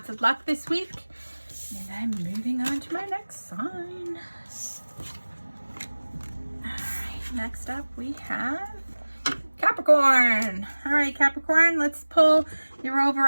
of luck this week. And I'm moving on to my next sign. Alright, next up we have Capricorn. Alright, Capricorn, let's pull your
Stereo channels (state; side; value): inverted; both; correlation -1.00